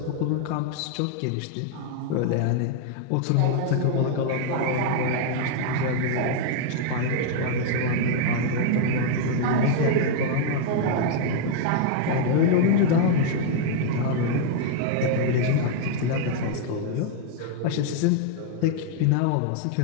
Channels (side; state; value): both; different; correlation 0.00